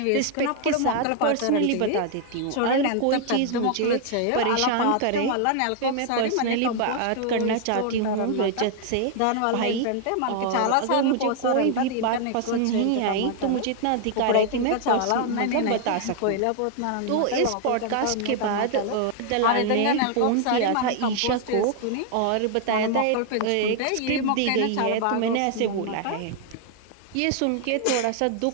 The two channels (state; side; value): different; both; correlation 0.00